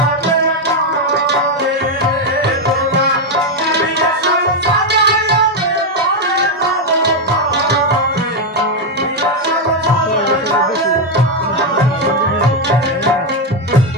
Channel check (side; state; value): both; normal; correlation 0.04